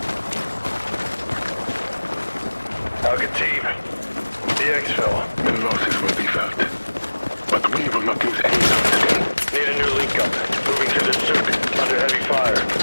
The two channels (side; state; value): both; inverted; correlation -1.00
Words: Al-Khatib, the exfil. The losses will be felt. But we will not lose any time today. Need a new link up. Moving to the souk. Under heavy fire.